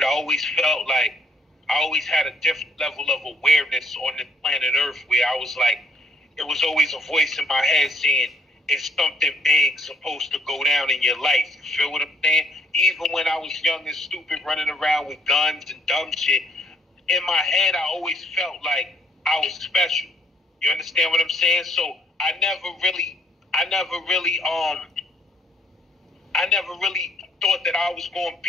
I always felt like I always had a different level of awareness on the planet Earth where I was like, it was always a voice in my head saying, it's something big supposed to go down in your life. You feel what I'm saying? Even when I was young and stupid running around with guns and dumb shit, in my head I always felt like I was special. You understand what I'm saying? So I never really thought that I was going to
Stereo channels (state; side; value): normal; both; correlation 0.68